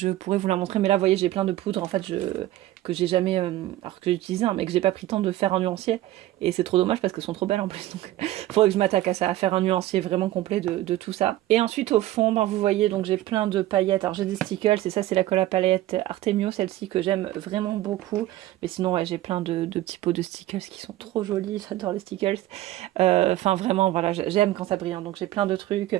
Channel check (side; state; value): left; quieter; 15.0 dB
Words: pourrais vous la montrer. Mais là vous voyez j'ai plein de poudres en fait que j'ai jamais, alors que j'ai utilisé, hein, mais que j'ai pas pris le temps de faire un nuancier. Et c'est trop dommage parce qu'elles sont trop belles en plus. Donc faudrait que je m'attaque à ça, à faire un nuancier vraiment complet de tout ça. Et ensuite au fond, ben, vous voyez, donc j'ai plein de paillettes. Alors j'ai des stickles, et ça c'est la colle à paillettes Artemio, celle-ci que j'aime vraiment beaucoup. Mais sinon ouais, j'ai plein de petits pots de stickles qui sont trop jolis, j'adore les stickles. Enfin vraiment, voilà, j'aime quand ça brille. Hein. Donc j'ai plein de